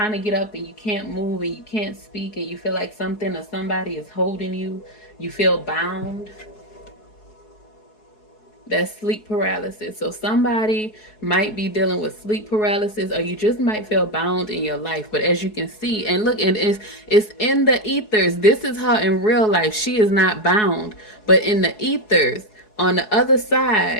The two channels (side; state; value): right; late; 4.7 ms